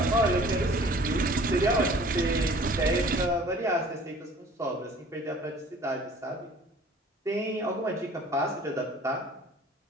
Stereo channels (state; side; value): normal; both; correlation 0.50